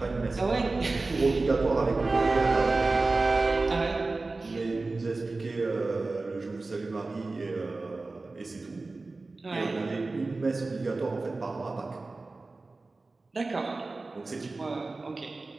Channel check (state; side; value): quieter; left; 3.5 dB